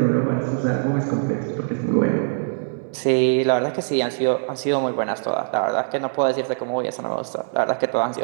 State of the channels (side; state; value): left; silent; 64 dB below the other